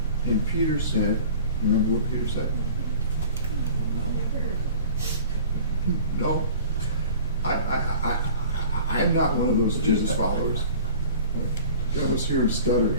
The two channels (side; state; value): both; inverted; correlation -0.43